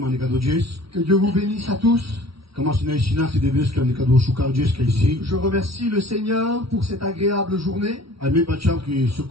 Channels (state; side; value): late; left; 0.75 ms